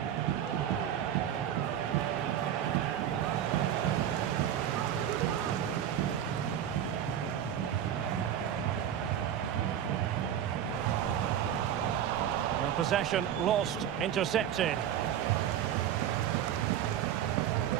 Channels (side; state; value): left; quieter; 10.2 dB